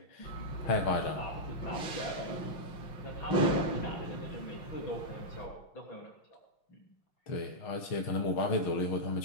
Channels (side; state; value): right; late; 5.7 ms